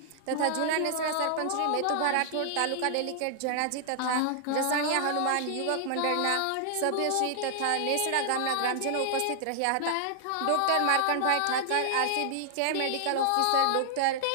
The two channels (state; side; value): different; both; correlation 0.00